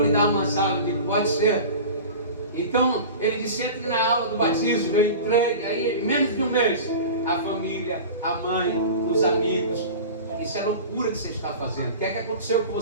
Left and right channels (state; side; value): inverted; both; correlation -0.34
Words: lhe dar umas aulas. Eu digo, pode ser. Então ele disse, entre na aula do batismo. Eu entrei, aí em menos de um mês, a família, a mãe, os amigos. Isso é loucura que você está fazendo. O que é que aconteceu com